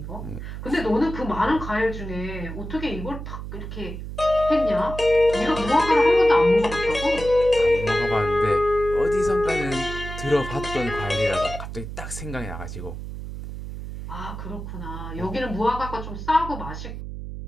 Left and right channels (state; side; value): noise; right; hum, 8 dB below the sound